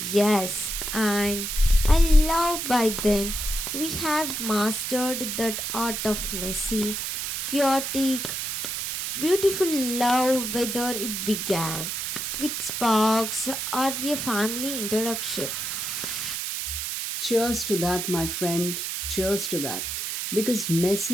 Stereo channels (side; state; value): right; noise; hiss, 3 dB below the sound